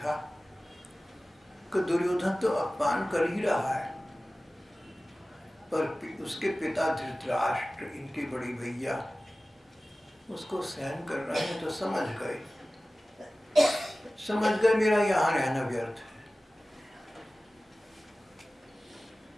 कि दुर्योधन तो अपमान कर ही रहा है, पर उसके पिता धृतराष्ट्र, इनके बड़े भैया, उसको सहन कर रहे हैं, तो समझ गए मेरा यहाँ रहना व्यर्थ है,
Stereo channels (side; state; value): both; normal; correlation 0.97